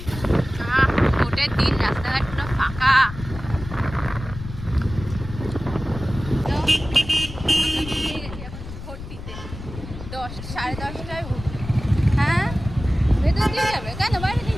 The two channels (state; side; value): noise; left; rumble, 11 dB below the sound